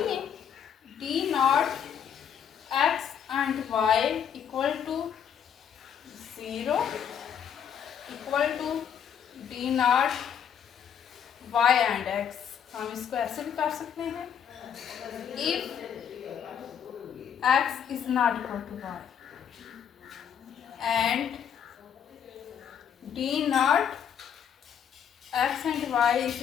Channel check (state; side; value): quieter; right; 8.4 dB